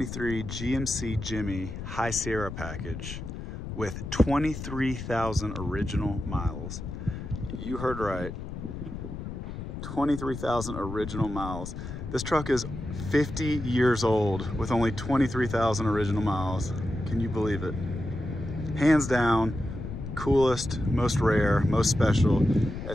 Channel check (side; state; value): left; noise; rumble, 8 dB below the sound